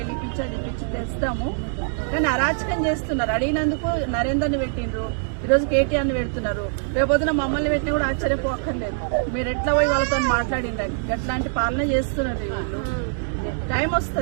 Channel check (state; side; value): silent; left; 63 dB below the other